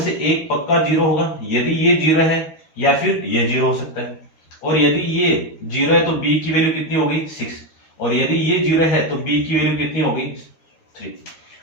एक पक्का 0 होगा। यदि ये 0 है या फिर ये 0 हो सकता है, और यदि ये 0 है तो b की वैल्यू कितनी होगी 6, और यदि ये 0 है तो b की वैल्यू कितनी होगी 3।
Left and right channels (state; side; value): late; right; 13 ms